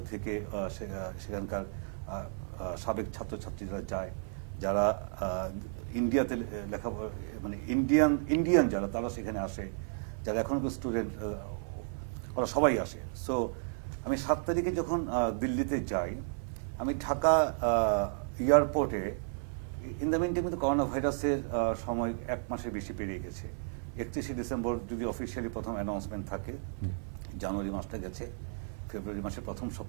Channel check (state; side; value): silent; left; 56 dB below the other